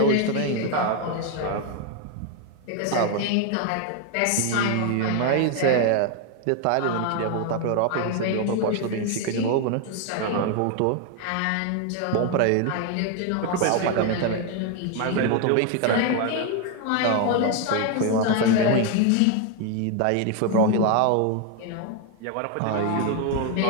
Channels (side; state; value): both; different; correlation 0.01